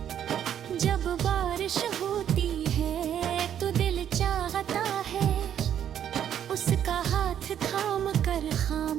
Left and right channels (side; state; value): left; quieter; 9.7 dB